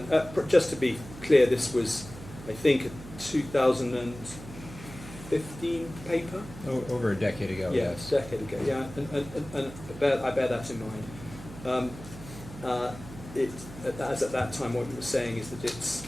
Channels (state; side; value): noise; right; hum, 14 dB below the sound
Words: just to be clear, this was, I think, a 2015 paper? Over a decade ago, Yeah, yes. a decade ago, yeah, and I bear that in mind. As at that time, what you were saying is that it's